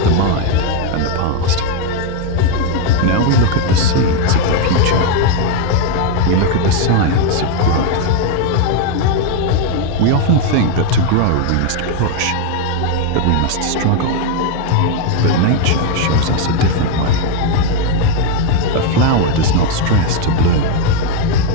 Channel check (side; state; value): both; different; correlation 0.01